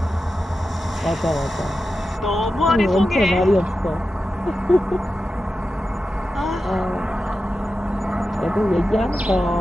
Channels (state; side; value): normal; both; correlation 0.91